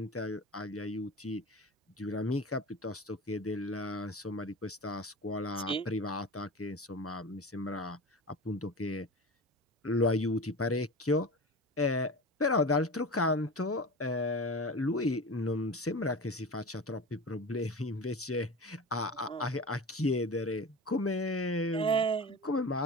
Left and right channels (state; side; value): normal; both; correlation 0.31